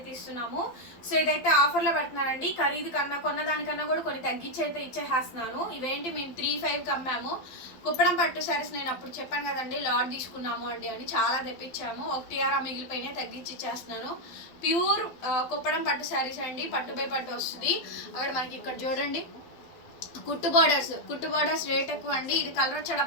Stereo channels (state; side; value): late; right; 12 ms